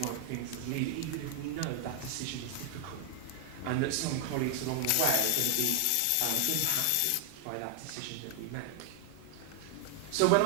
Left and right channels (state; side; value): different; both; correlation 0.00